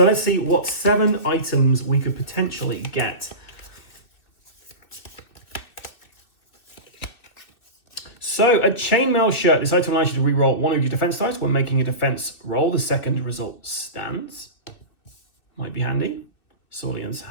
let's see what 7 items we could potentially get. So a chainmail shirt. This item allows you to reroll 1 of your defense dice when making a defense roll. The second result stands. Might be handy. Saulian's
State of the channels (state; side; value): late; right; 2.7 ms